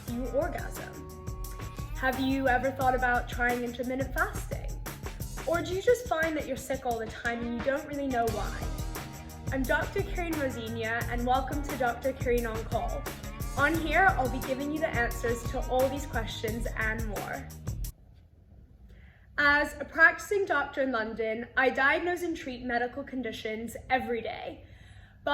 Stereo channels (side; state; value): both; identical; correlation 1.00